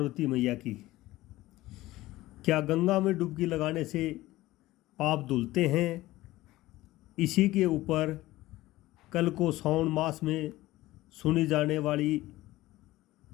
मैया की। क्या गंगा में डुबकी लगाने से पाप धुलते हैं? इसी के ऊपर कल को श्रावण मास में सुनी जाने वाली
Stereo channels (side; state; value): right; quieter; 17.3 dB